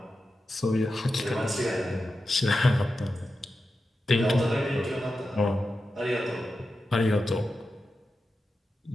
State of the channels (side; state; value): both; normal; correlation 0.91